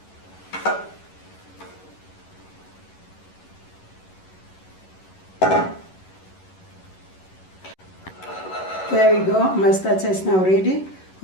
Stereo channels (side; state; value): right; late; 11 ms